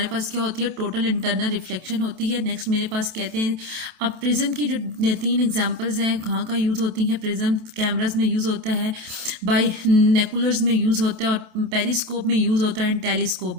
पास क्या होती है, टोटल इंटरनल रिफ्लेक्शन होती है। नेक्स्ट मेरे पास कहते हैं, अब प्रिज्म की जो 3 एग्जांपल्स हैं कहाँ का यूज़ होती हैं। प्रिज्म कैमरास में यूज़ होता है, बाई नेकुलर्स में यूज़ होता है, और पेरिस्कोप में यूज़ होता है, एंड टेलीस्कोप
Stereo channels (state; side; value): late; left; 27 ms